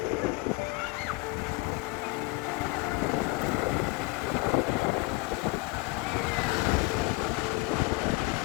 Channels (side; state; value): right; quieter; 23.4 dB